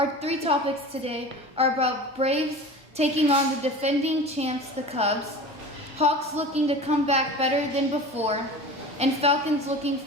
3 topics today are about Braves taking on the defending champs, the Cubs, Hawks looking to come back better than before, and Falcons looking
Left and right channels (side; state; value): both; normal; correlation 0.35